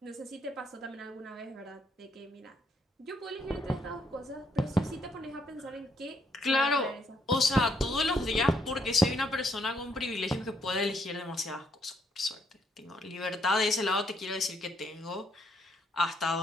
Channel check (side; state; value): both; normal; correlation 0.72